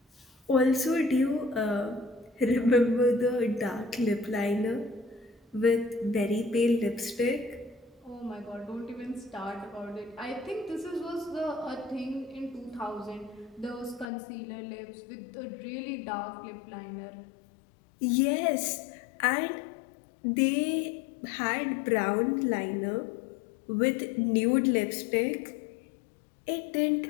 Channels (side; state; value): right; drops out; at 14.1 s